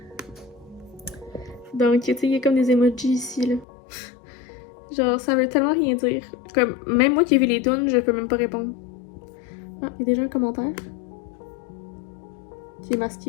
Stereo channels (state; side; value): drops out; right; at 3.7 s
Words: Donc tu sais, il y a comme des emojis ici là. Genre ça veut tellement rien dire. Comme même moi qui ai vu les tunes, je peux même pas répondre. Ah, il y a déjà un commentaire. Qui est